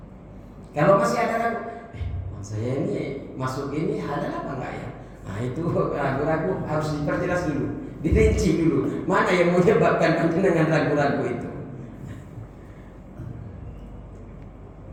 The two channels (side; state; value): both; identical; correlation 1.00